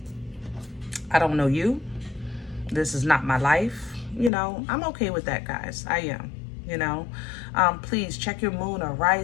I don't know you. This is not my life. You know, I'm okay with that, guys. I am. You know, please check your moon or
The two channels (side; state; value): right; drops out; at 4.3 s